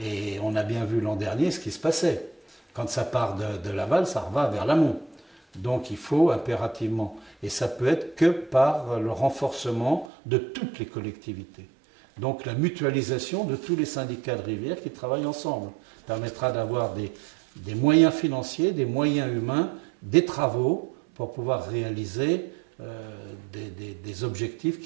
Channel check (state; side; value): drops out; left; at 10.1 s